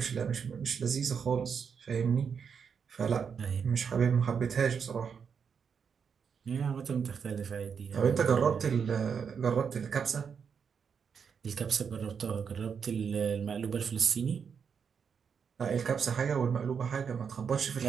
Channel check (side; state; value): left; quieter; 6.6 dB